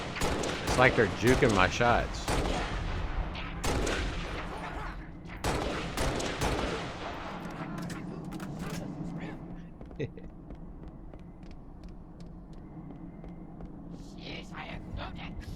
It's like they're juking my shots.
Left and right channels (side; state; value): both; identical; correlation 1.00